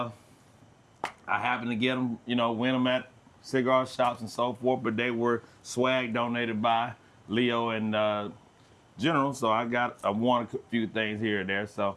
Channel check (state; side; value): identical; both; correlation 1.00